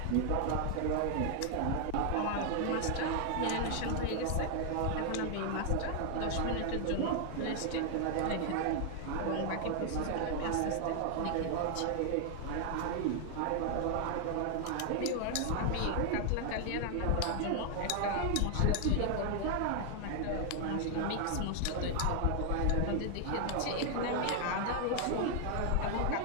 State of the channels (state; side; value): different; both; correlation 0.00